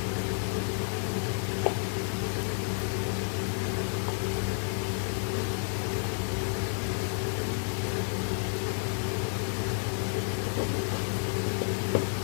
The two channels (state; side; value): silent; right; 57 dB below the other